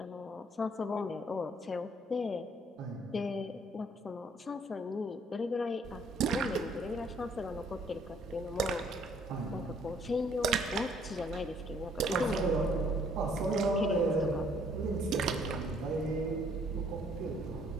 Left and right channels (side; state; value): both; normal; correlation 0.63